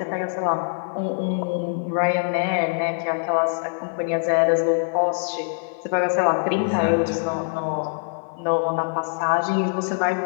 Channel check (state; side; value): silent; right; 59 dB below the other